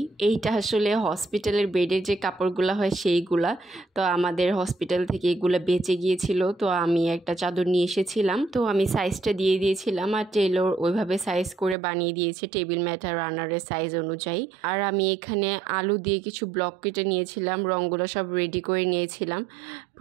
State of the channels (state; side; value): drops out; left; at 11.8 s